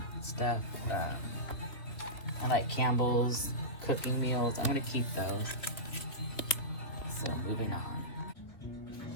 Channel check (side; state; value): right; late; 3.3 ms